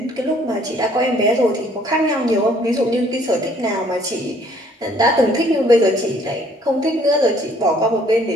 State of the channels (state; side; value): normal; both; correlation 0.60